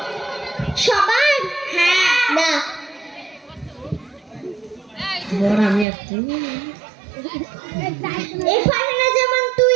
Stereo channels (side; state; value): left; drops out; at 5.9 s